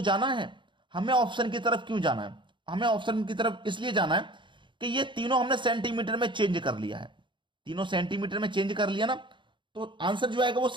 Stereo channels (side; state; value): left; late; 0.23 ms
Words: जाना है। हमें ऑप्शन की तरफ क्यों जाना है? हमें ऑप्शन की तरफ इसलिए जाना है कि ये तीनों हमने सेंटीमीटर में चेंज कर लिया है। तीनों सेंटीमीटर में चेंज कर लिया ना, तो आंसर जो आएगा वो